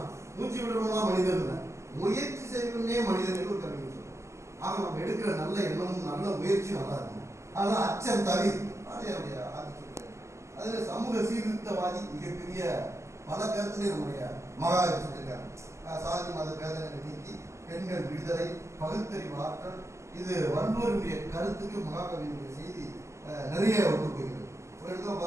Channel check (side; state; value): left; late; 0.13 ms